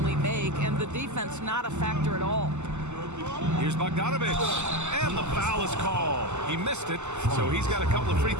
make, and the defense not a factor at all. Here's Bogdanovich. And the foul is called. He missed it, so he's got a couple of free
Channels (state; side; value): late; left; 0.83 ms